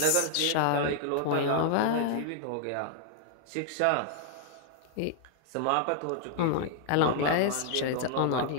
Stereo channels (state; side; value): different; both; correlation 0.00